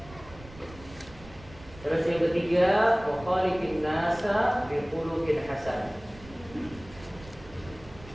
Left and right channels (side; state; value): right; noise; rumble, 19 dB below the sound